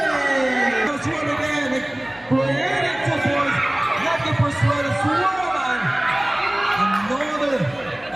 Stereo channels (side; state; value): left; noise; hum, 25 dB below the sound